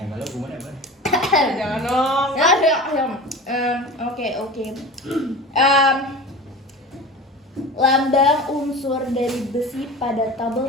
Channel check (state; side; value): normal; both; correlation 0.34